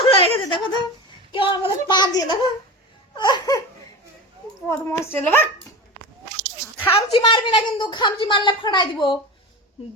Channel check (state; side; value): normal; both; correlation 0.28